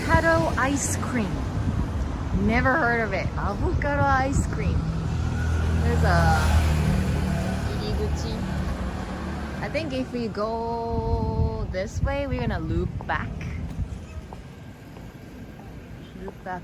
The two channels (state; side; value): identical; both; correlation 1.00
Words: ice cream. Never heard of it. Avocado ice cream. There's a iriguchi. I think if we go this way, we're gonna loop back. Loop back